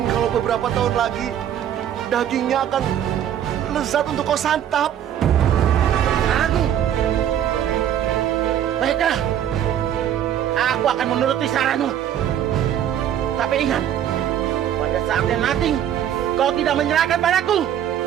kalau beberapa tahun lagi, dagingnya akan lezat untuk kau santap. Baiklah, aku akan menuruti saranmu. Tapi ingat, pada saatnya nanti kau tidak menyerahkan padaku.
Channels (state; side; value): quieter; left; 10.2 dB